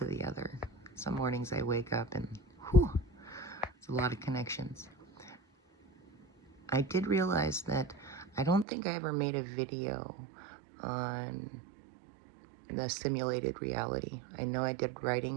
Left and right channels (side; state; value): left; drops out; at 8.7 s